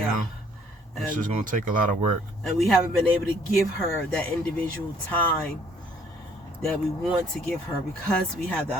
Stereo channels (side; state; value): both; normal; correlation 0.61